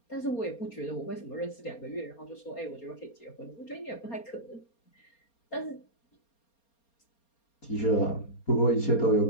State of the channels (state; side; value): late; right; 4.3 ms